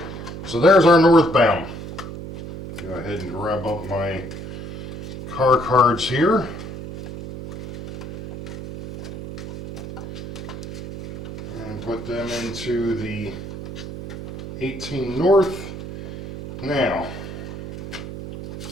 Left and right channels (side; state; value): right; noise; hum, 9 dB below the sound